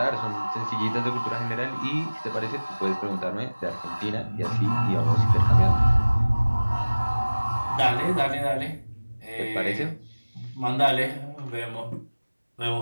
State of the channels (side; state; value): both; inverted; correlation -1.00